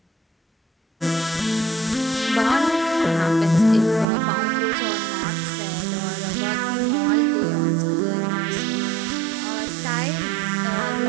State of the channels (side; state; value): left; drops out; at 4.0 s